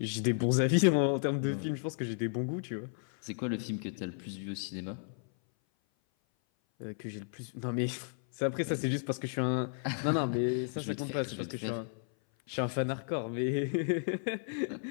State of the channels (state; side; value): silent; right; 55 dB below the other